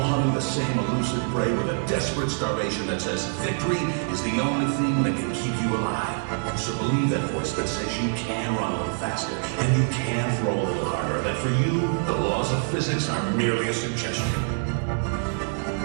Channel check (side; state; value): left; silent; 61 dB below the other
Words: hunting the same elusive prey with a desperate starvation that says victory is the only thing that can keep you alive. So believe that voice that says you can run a little faster, and you can throw a little harder, and that for you, the laws of physics are merely a suggestion.